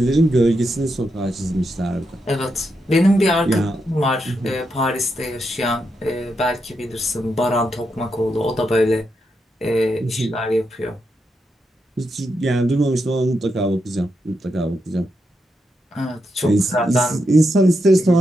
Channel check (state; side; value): normal; both; correlation 0.83